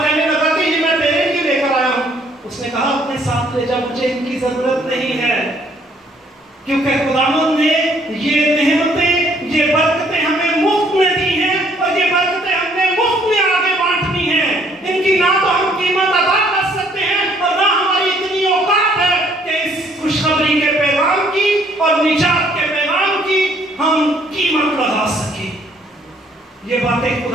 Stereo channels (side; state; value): both; normal; correlation 0.64